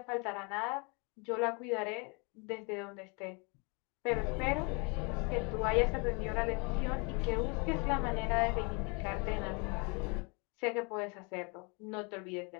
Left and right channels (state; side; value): quieter; right; 31.9 dB